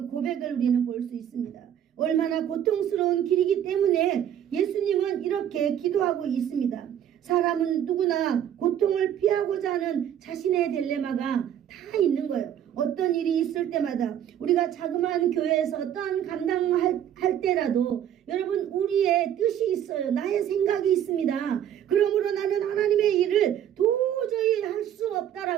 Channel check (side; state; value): left; quieter; 10.1 dB